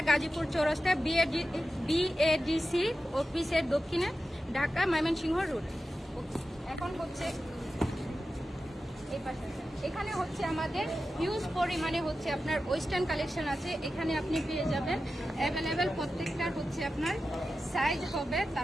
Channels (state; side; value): normal; both; correlation 0.92